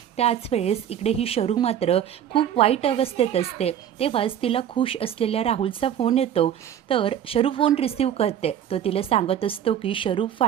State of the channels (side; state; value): left; quieter; 10.0 dB